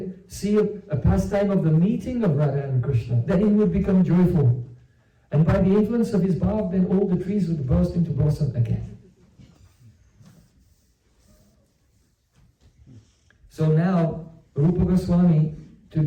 see a pastime of the meeting of Radha and Krishna, then he would become joyful. And by the influence of his bhav, then all the trees would burst into blossom again. So now, Rūpa Gosvāmī,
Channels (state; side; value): identical; both; correlation 1.00